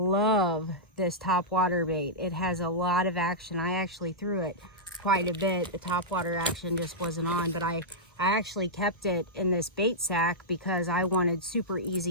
this topwater bait. It has a lot of action. I actually threw it quite a bit. The topwater action just wasn't on, but I actually kept it in this bait sack because I wanted super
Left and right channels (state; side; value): normal; both; correlation -0.11